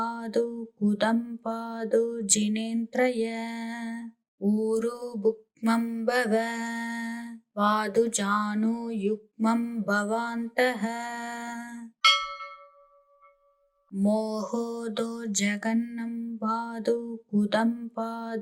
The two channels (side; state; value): both; identical; correlation 1.00